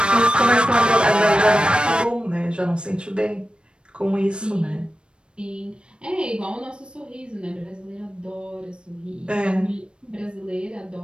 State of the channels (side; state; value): left; late; 0.055 ms